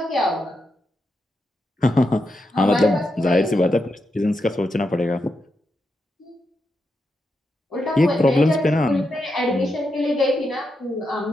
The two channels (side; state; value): both; normal; correlation 0.85